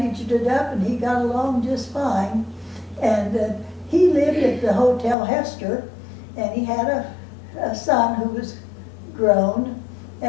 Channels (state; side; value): drops out; right; at 5.2 s